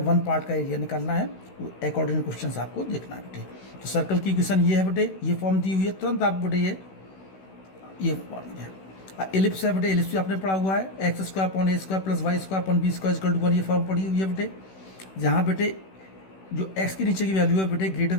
1 पार्ट का एरिया निकालना है, अकॉर्डिंग क्वेश्चन आपको देखना है बेटे। तो सर्कल की इक्वेशन ये है बेटे, ये फॉर्म दी हुई है, तुरंत आप बेटे ये फॉर्म है। एलिप्स है बेटे, एलिप्स भी आपने पढ़ा हुआ है, X square upon A square plus Y square upon B square equal to 1, ये फॉर्म पड़ी हुई है बेटे। जहाँ बेटे जो एक्स के नीचे की वैल्यू है बेटे ग्रेटर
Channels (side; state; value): right; late; 16 ms